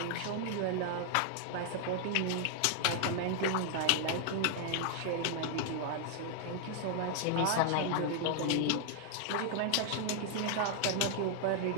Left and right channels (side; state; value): both; different; correlation 0.00